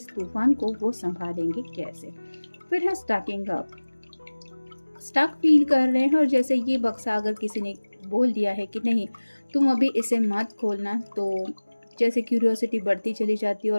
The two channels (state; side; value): inverted; both; correlation -1.00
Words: तूफान को वो संभालेंगे कैसे। फिर है स्टकिंग अप, स्टक फील कर रहे हैं, और जैसे ये बक्सा अगर किसी ने बोल दिया है कि नहीं तुम अभी इसे मत खोलना, तो जैसे क्यूरियोसिटी बढ़ती चली जाती है,